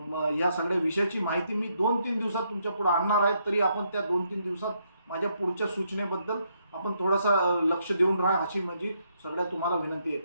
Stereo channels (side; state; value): both; inverted; correlation -0.75